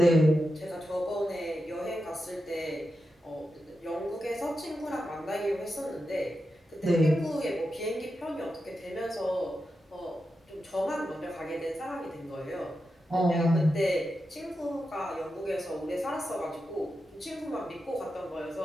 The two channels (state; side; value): normal; both; correlation 0.89